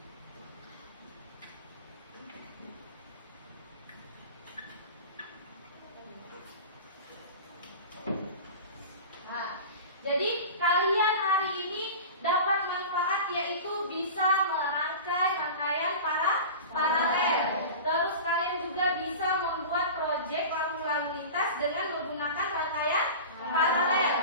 jadi kalian hari ini dapat manfaat yaitu bisa merangkai rangkaian paralel. Terus kalian juga bisa membuat proyek lampu lalu lintas dengan menggunakan rangkaian paralel.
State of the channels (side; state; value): both; inverted; correlation -0.33